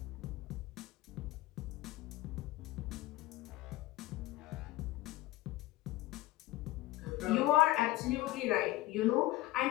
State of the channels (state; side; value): quieter; right; 17.8 dB